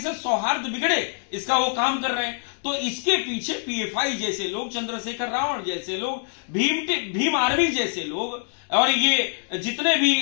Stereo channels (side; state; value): right; silent; digital silence